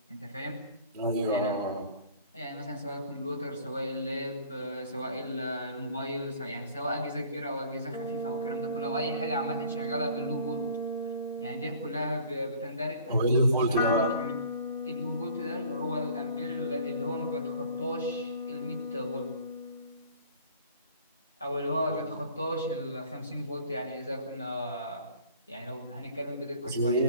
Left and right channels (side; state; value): both; inverted; correlation -0.50